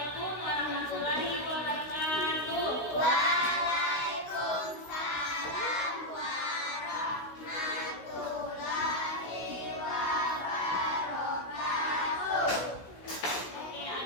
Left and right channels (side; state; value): right; late; 16 ms